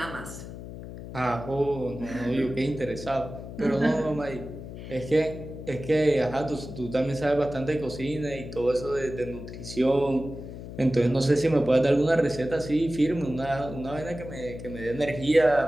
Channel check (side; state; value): left; noise; hum, 11 dB below the sound